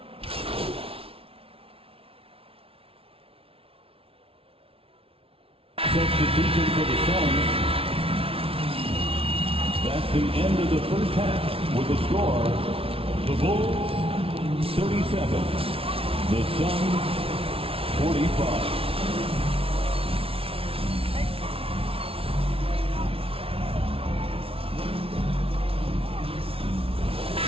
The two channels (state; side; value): late; left; 0.27 ms